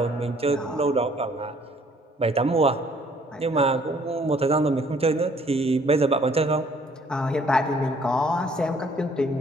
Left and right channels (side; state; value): both; normal; correlation 0.61